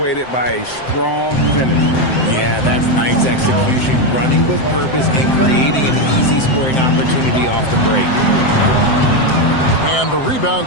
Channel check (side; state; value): right; late; 7.7 ms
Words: by a strong finish. Yeah, that's nice execution. Running with purpose and creating an easy scoring opportunity off the break. And the